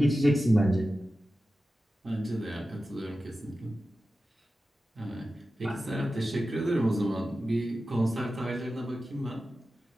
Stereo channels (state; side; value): normal; both; correlation 0.94